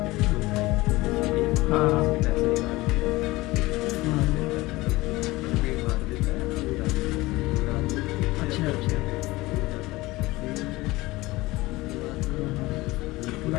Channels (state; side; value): quieter; right; 20.2 dB